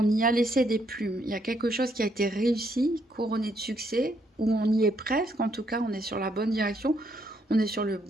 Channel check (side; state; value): both; normal; correlation 0.73